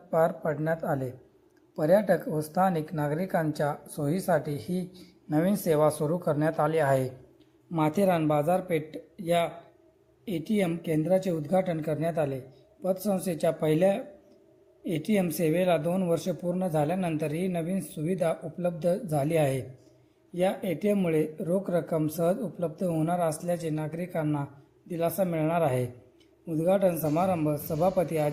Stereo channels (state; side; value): identical; both; correlation 1.00